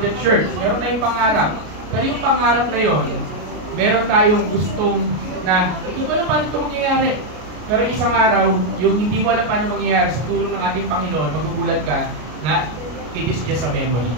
church. Meron tayong pangarap. Pero yung pangarap na yon, meron tayong gustong na, hindi mo alam paano ito mangyayari. Pero isang araw, yung hindi mo alam paano mangyayari sa tulong ng ating Panginoon, magugulat ka na it is just a memory.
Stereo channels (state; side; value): late; left; 33 ms